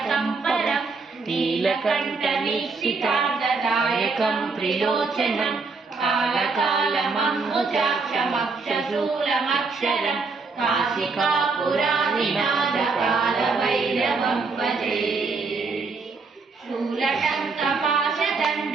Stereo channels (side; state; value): left; quieter; 4.3 dB